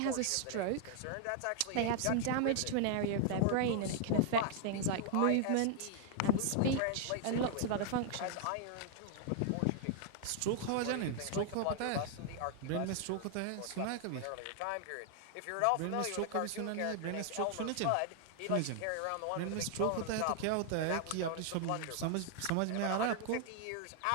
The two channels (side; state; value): both; different; correlation 0.00